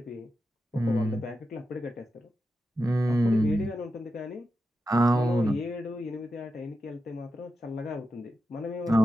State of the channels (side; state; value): both; normal; correlation 0.89